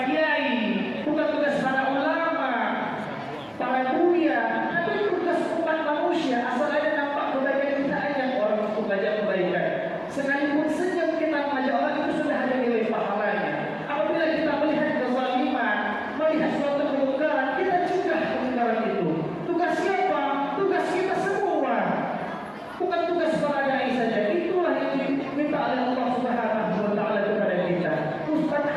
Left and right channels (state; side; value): identical; both; correlation 1.00